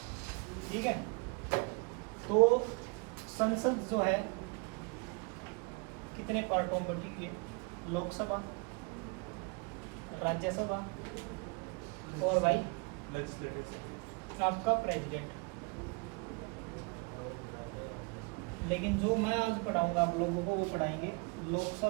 ठीक है, तो संसद जो है कितने पार्टों में बटी हुई है? लोकसभा, राज्यसभा और भाई आपका प्रेसिडेंट। लेकिन जो मैं आज पढ़ाऊंगा आप लोगों को वो पढ़ाएंगे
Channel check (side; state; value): left; quieter; 32.4 dB